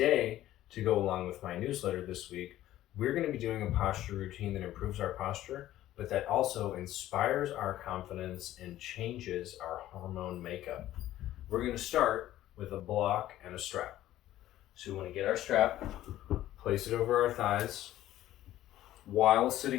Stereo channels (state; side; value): quieter; right; 13.9 dB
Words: to go along with my newsletter this week, we're going to be doing a posture routine that improves our posture, but that also inspires our confidence and changes our hormone makeup. We're going to start with a block and a strap. So we want to get our strap, place it over our thighs, while